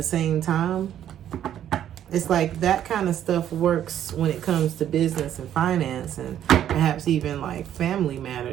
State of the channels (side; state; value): left; quieter; 10.7 dB